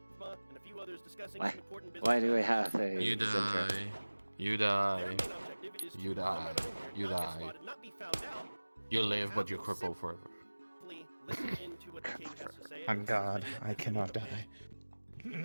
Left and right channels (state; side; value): inverted; both; correlation -1.00